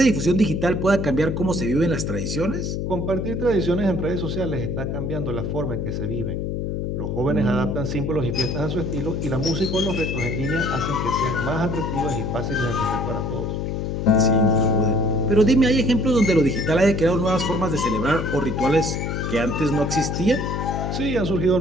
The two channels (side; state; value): left; noise; hum, 2 dB below the sound